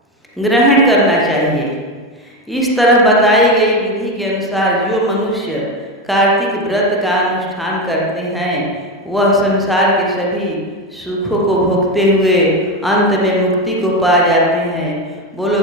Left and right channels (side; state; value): both; normal; correlation 0.15